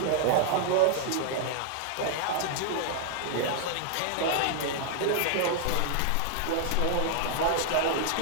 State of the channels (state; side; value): different; both; correlation -0.01